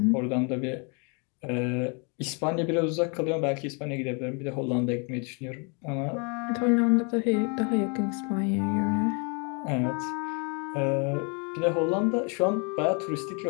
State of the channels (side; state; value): right; quieter; 34.9 dB